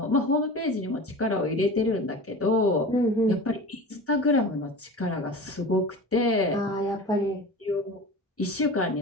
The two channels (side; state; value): both; normal; correlation 0.34